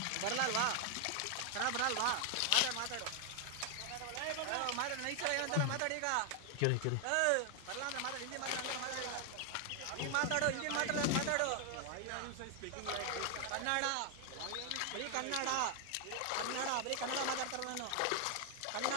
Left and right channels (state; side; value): different; both; correlation 0.00